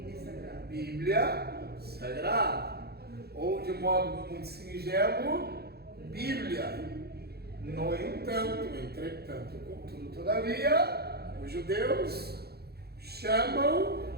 Bíblia Sagrada. Ou, de modo muito singelo, Bíblia. No entanto, entretanto, contudo, todavia, os judeus chamam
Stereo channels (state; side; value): late; left; 0.46 ms